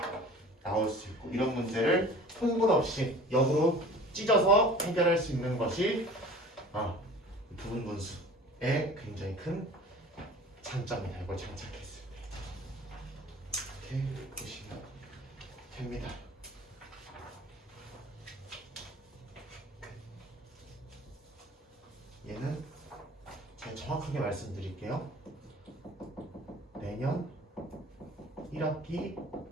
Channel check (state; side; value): normal; both; correlation 0.43